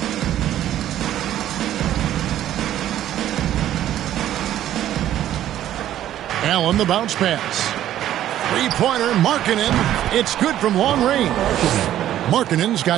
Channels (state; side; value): quieter; left; 12.2 dB